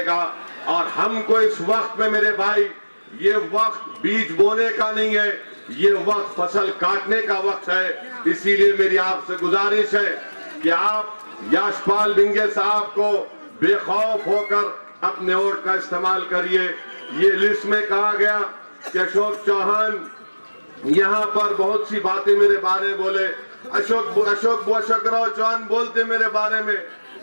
और हमको इस वक्त में मेरे भाई, ये वक्त बीज बोने का नहीं है, ये वक्त फसल काटने का वक्त है। इसीलिए मेरी आपसे गुजारिश है कि आप याशपाल भिंगे साहब को बेखौफ होकर अपने वोट का इस्तेमाल करिए। ये लिस्ट में कहा गया कि अशोक चौहान यहाँ पर बहुत सी बातें मेरे बारे में बोले, अशोक राव चौहान बोलते मेरे बारे में,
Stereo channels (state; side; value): inverted; both; correlation -1.00